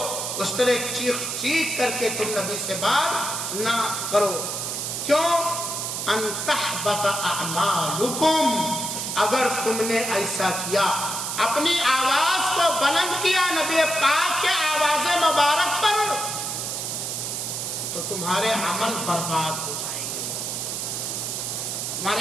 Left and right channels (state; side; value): noise; right; hiss, 3 dB below the sound